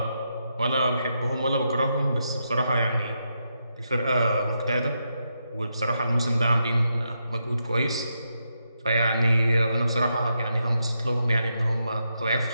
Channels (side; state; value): both; inverted; correlation -0.83